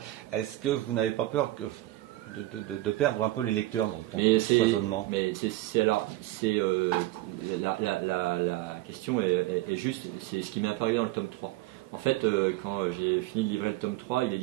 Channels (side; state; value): left; quieter; 17.2 dB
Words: Est-ce que vous n'avez pas peur de perdre un peu les lecteurs dans ce foisonnement? Mais la question est juste, c'est ce qui m'est apparu dans le tome 3. En fait, quand j'ai fini de livrer le tome 3,